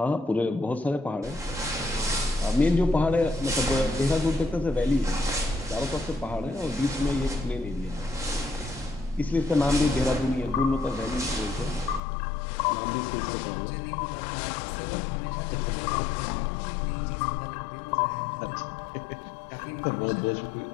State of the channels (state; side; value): drops out; right; at 12.0 s